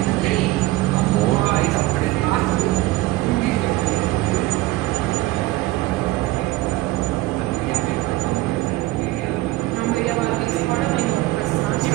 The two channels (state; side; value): quieter; left; 18.5 dB